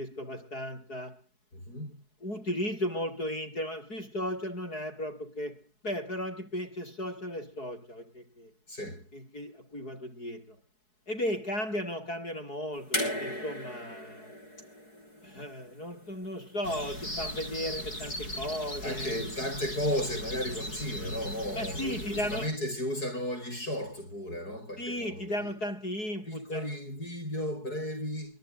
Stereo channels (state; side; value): late; right; 4.7 ms